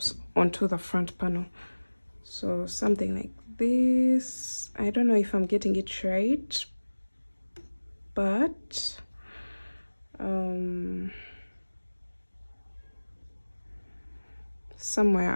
onto the front panel. So something like this. I don't know if I'm getting it right, but somewhere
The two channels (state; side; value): inverted; both; correlation -1.00